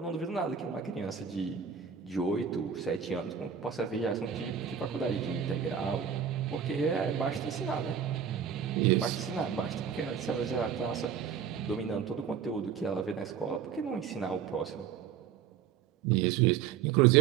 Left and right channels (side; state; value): left; quieter; 7.8 dB